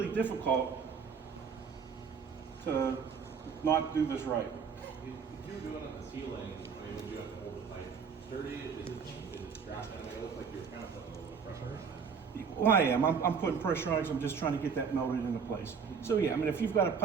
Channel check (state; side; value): quieter; left; 6.2 dB